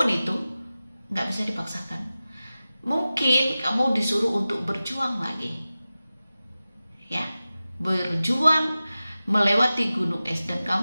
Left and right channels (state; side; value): inverted; both; correlation -0.96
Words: itu, nggak bisa dipaksakan. Mungkin kamu disuruh untuk berjuang lagi, ya, berjuang melewati gunung es, dan